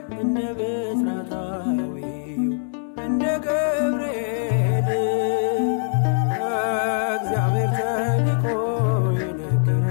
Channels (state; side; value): silent; right; digital silence